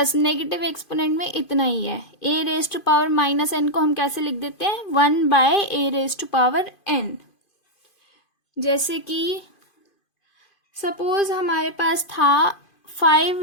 नेगेटिव एक्सपोनेंट में इतना ही है। a raise to power -n को हम कैसे लिख देते हैं, 1/a raise to power n। जैसे कि सपोज हमारे पास था 5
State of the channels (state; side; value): late; right; 2.5 ms